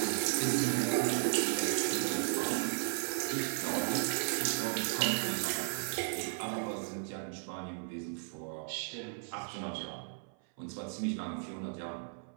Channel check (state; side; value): silent; left; 54 dB below the other